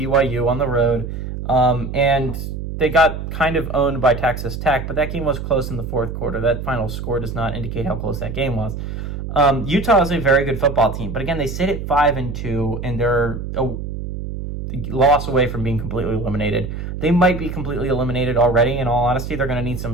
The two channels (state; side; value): noise; right; hum, 6 dB below the sound